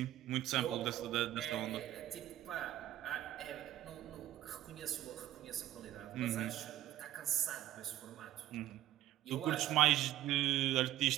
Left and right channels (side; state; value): left; quieter; 13.7 dB